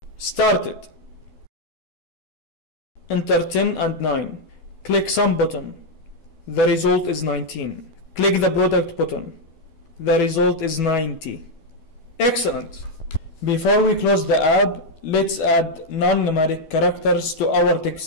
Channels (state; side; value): late; right; 12 ms